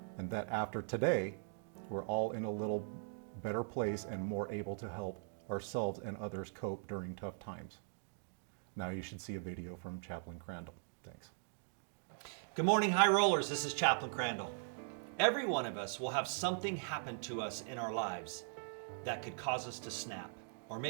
and that after today, we're all in a little better place and more able to help ourselves and others cope during tough times. Now you should see a video from Chaplain Crandell. Thanks. Good morning, high rollers. This is Chaplain Crandell. Every one of us will have something happen to us in our lives that could cause us to snap, or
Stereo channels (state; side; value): silent; left; digital silence